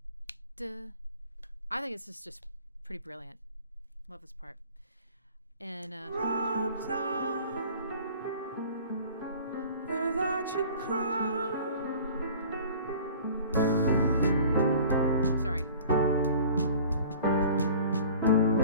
da. I think this is just pretty brilliant. Love this part. And Robes on, without your crown. sorry.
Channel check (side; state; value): both; inverted; correlation -0.45